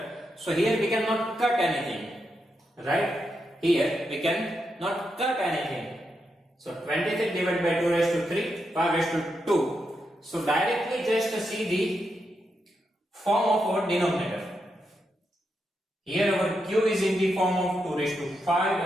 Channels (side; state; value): both; normal; correlation 0.84